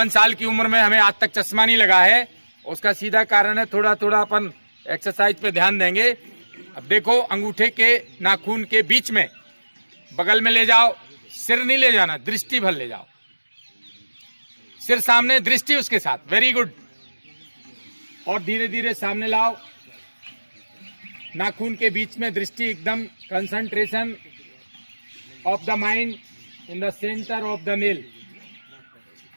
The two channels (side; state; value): both; inverted; correlation -1.00